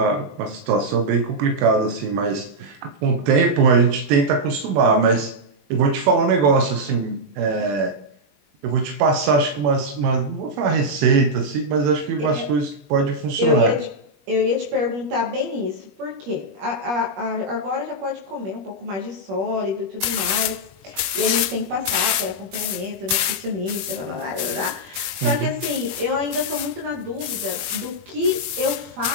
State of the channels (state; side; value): late; left; 21 ms